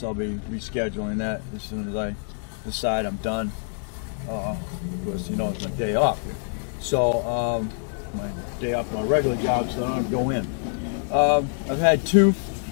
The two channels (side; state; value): right; silent; 61 dB below the other